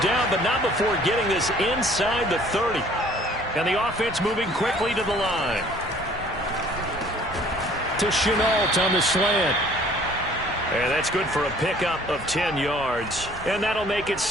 but not before getting this inside the 30. And the offense moving quickly to the line. To Chenault on the slant. And that's good for a pickup of 10 yards. And that'll make it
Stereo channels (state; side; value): normal; both; correlation 0.55